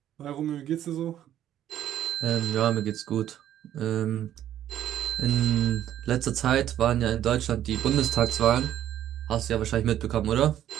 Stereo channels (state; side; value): quieter; left; 11.5 dB